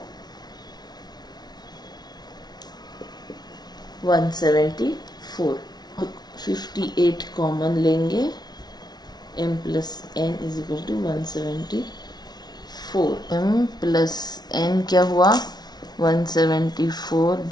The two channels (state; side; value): late; right; 0.19 ms